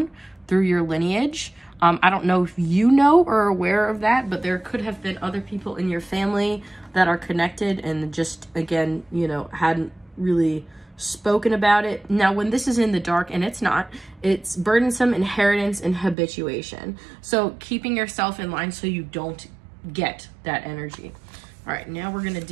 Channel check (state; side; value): drops out; left; at 16.2 s